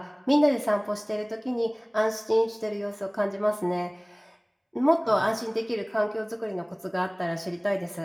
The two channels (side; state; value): both; identical; correlation 1.00